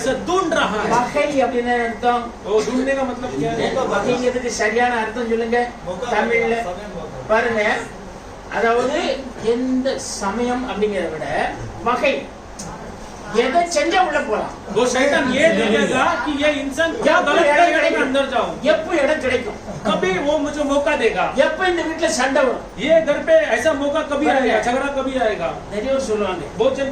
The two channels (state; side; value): identical; both; correlation 1.00